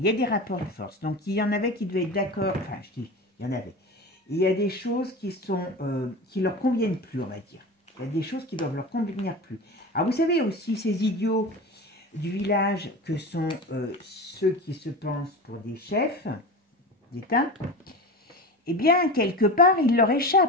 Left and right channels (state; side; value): normal; both; correlation 0.28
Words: y a des rapports de force. Donc, il y en avait qui devaient être d'accord. Enfin, je dis, il y en avait. Il y a des choses qui leur conviennent plus, on va dire. Il y a des choses qui doivent leur convenir plus. Alors, vous savez aussi, ces idiots du village que sont ceux qui se pensent pour des chefs d'État, eh bien, quelque part, ils leur